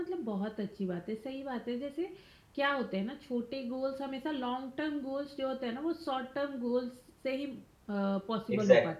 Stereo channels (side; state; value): both; identical; correlation 1.00